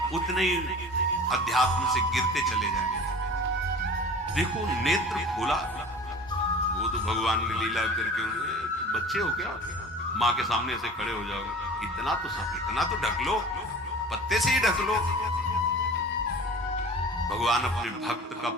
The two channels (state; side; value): normal; both; correlation 0.40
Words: उतने ही अध्यात्म से गिरते चले जाएंगे। देखो नेत्र खोला, वो तो भगवान ने लीला करके, बच्चे हो क्या, माँ के सामने ऐसे खड़े हो जाओगे, इतना तो ढक लो, पत्ते से ही ढक लो। भगवान अपने भक्त का